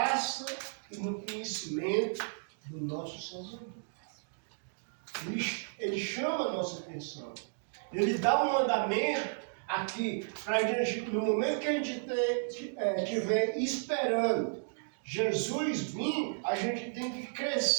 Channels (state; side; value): silent; left; digital silence